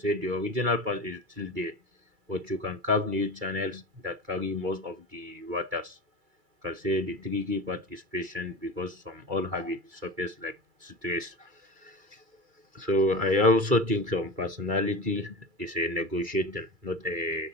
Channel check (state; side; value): late; left; 2.3 ms